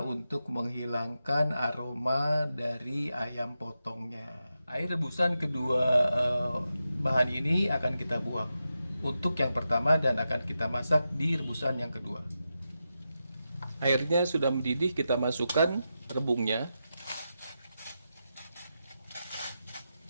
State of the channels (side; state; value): both; inverted; correlation -0.89